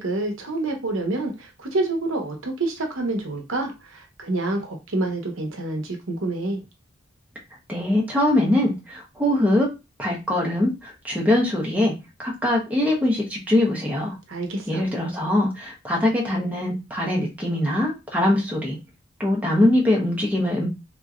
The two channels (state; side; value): normal; both; correlation 0.72